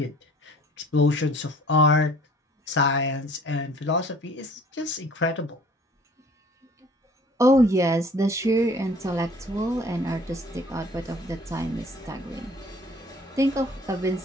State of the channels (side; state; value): both; normal; correlation 0.52